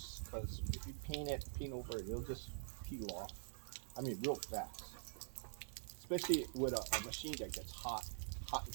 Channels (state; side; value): silent; left; digital silence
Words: because if you paint over it, it'll just peel off. I mean, real fast. Especially with a machine that gets hot and